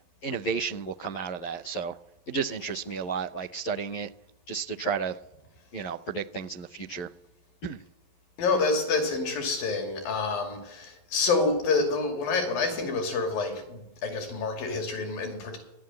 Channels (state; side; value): late; right; 11 ms